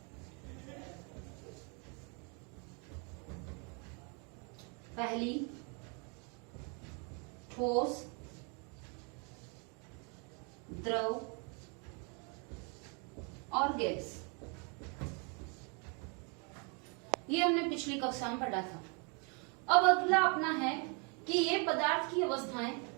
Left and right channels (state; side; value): quieter; left; 35.3 dB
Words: पहली ठोस, द्रव और गैस। ये हमने पिछली कक्षा में पढ़ा था। अब अगला अपना है कि ये पदार्थ की अवस्थाएं